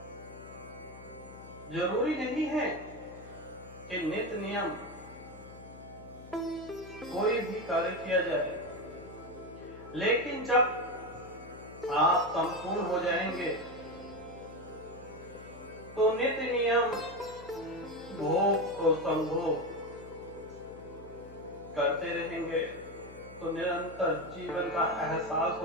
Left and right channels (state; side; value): noise; left; hum, 17 dB below the sound